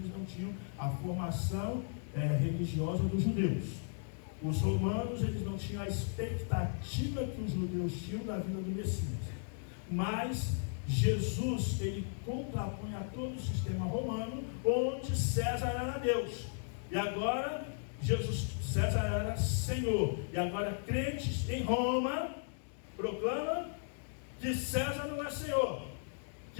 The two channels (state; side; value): silent; right; digital silence